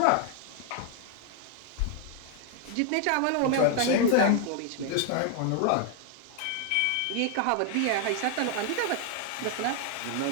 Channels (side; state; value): both; different; correlation 0.00